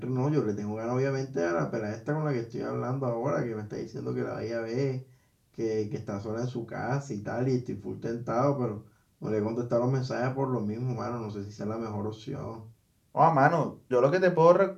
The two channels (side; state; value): both; identical; correlation 1.00